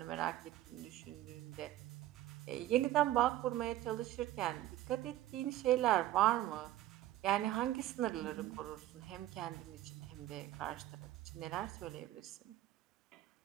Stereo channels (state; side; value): quieter; left; 14.3 dB